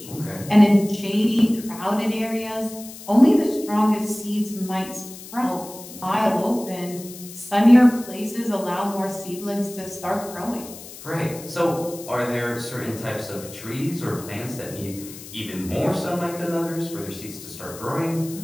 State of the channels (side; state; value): left; noise; hiss, 15 dB below the sound